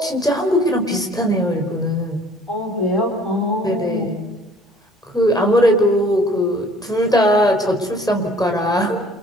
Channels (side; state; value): both; normal; correlation 0.54